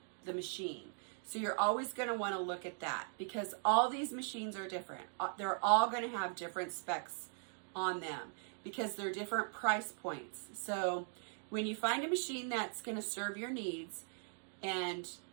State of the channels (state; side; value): silent; left; 51 dB below the other